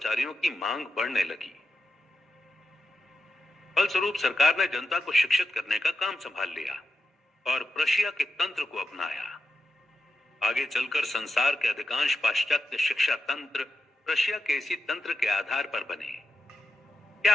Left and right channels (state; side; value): normal; both; correlation 0.89